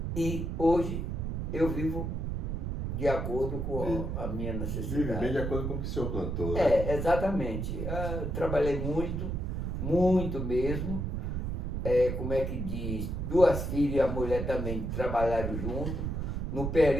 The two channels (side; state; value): right; noise; rumble, 2 dB below the sound